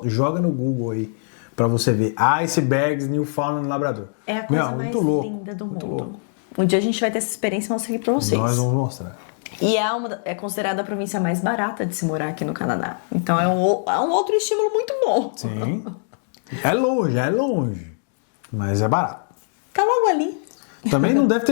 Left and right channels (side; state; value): right; silent; digital silence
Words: Joga no Google aí pra você ver. Icebergs, Newfoundland, Labrador. É a coisa mais linda do mundo. Um dia a gente vai ter essa experiência e mostrar aqui pra vocês. Nós vamos mostrar. E é considerada a província mais barata de se morar aqui no Canadá. Então é um outro estímulo muito bom. Sim. É longe. Mas é barato. Tá logo ali. Também não deve